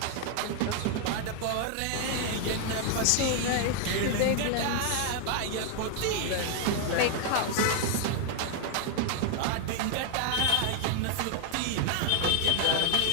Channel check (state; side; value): different; both; correlation 0.00